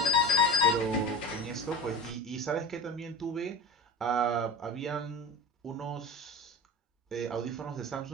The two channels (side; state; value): both; normal; correlation 0.30